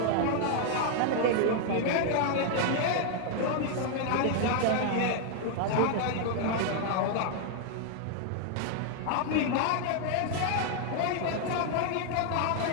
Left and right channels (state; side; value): different; both; correlation 0.00